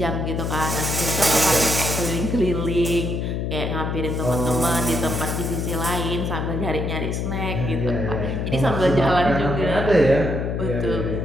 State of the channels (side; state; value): left; noise; hum, 1 dB below the sound